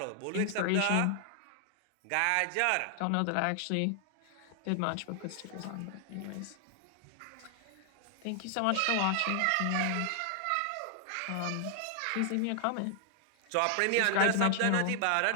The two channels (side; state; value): both; different; correlation 0.00